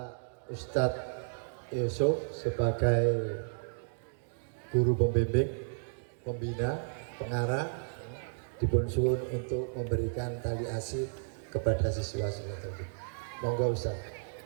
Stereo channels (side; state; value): left; silent; digital silence